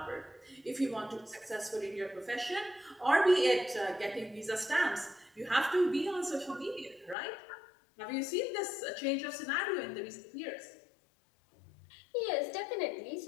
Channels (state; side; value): drops out; right; at 7.2 s